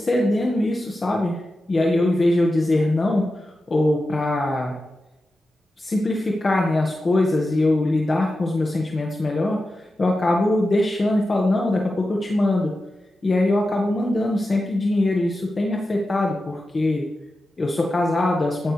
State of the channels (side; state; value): both; normal; correlation 0.92